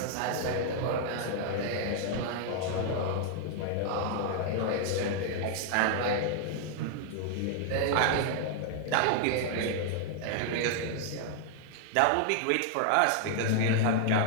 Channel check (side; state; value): both; different; correlation 0.00